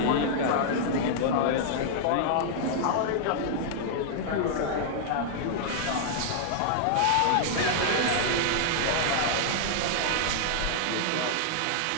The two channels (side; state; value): both; different; correlation -0.01